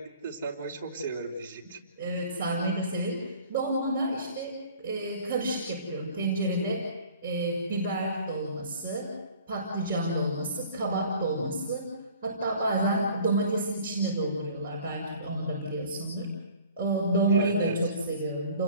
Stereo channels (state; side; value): inverted; both; correlation -0.49